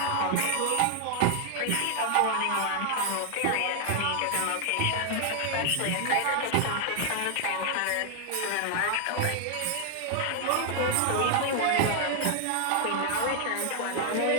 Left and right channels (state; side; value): different; both; correlation 0.00